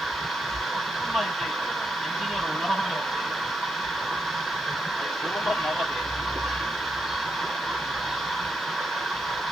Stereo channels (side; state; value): right; noise; hiss, 26 dB below the sound